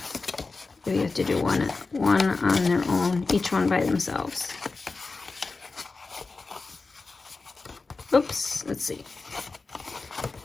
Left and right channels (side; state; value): right; quieter; 3.9 dB